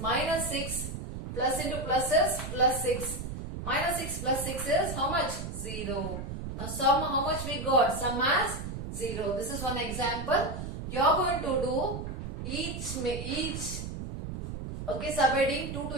6 plus into plus is plus 6. Minus 6 plus 6 is how much? 0. Now sum, how much we got? Sum as 0. This is one example. You are going to do each okay, subheading 2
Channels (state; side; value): noise; right; rumble, 7 dB below the sound